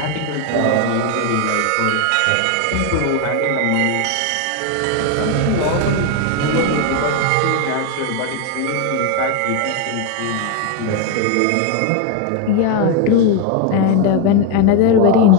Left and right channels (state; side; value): different; both; correlation 0.01